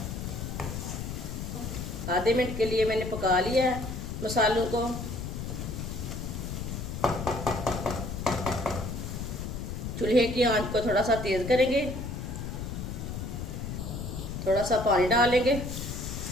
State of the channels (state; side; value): noise; left; rumble, 5 dB below the sound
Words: आधे मिनट के लिए मैंने पका लिया है मसालों को। चूल्हे की आंच को थोड़ा सा तेज करेंगे। थोड़ा सा पानी डालेंगे।